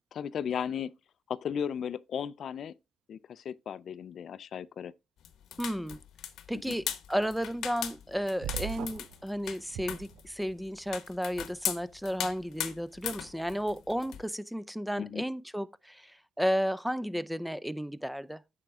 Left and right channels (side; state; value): both; normal; correlation 0.89